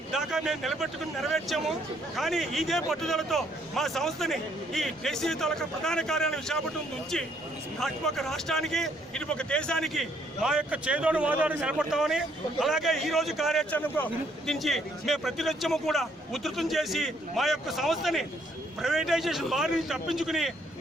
దాకా మేము నిలబెట్టుకుని నెరవేర్చాము. కానీ ఇదే పట్టుదలతో మా సంస్థని ఈ దేశీయ తాలూకా ప్రధాన కార్యాలయం విశాఖపట్నం నుంచి అటుపక్క రాష్ట్రానికి ఇటుపక్క దేశానికి మా యొక్క చేదోడు వాదోడు నిలబడతామని, అలాగే ఈ రోజు కార్యాచరణకు దించి మేము ప్రతినిత్యము కూడా ఉధృతం చేసి మా యొక్క సంస్థని ప్రైవేటైజేషన్ బారి నుంచి తప్పించుకుని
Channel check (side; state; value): both; normal; correlation 0.68